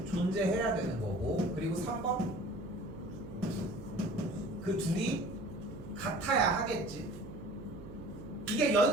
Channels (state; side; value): noise; right; hum, 13 dB below the sound